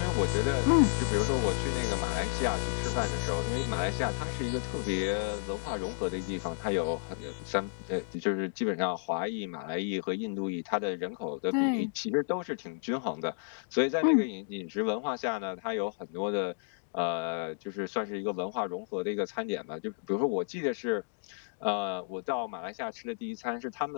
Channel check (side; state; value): right; silent; digital silence